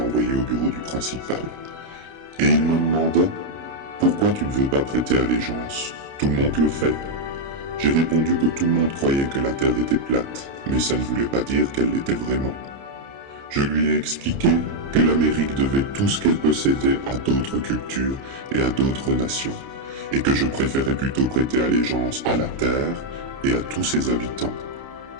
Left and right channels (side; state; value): left; late; 29 ms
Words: au bureau du principal. Et il me demanda « Pourquoi tu ne veux pas prêter allégeance? Tout le monde le fait. » J'ai répondu que tout le monde croyait que la Terre était plate, mais ça ne voulait pas dire qu'elle l'était vraiment. Je lui ai expliqué que l'Amérique devait tout ce qu'elle possédait à d'autres cultures et à d'autres nations, et que je préférais plutôt prêter allégeance à la Terre et à tous ses habitants.